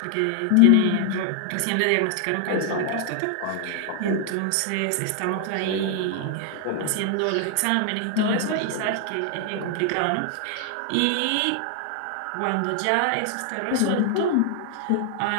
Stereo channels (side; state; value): both; different; correlation 0.00